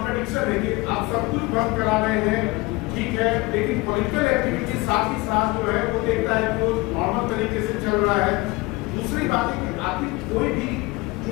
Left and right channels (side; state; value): right; quieter; 22.8 dB